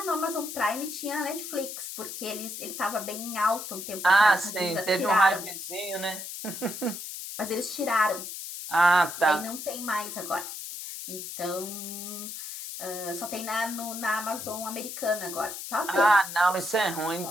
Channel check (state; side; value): noise; left; hiss, 8 dB below the sound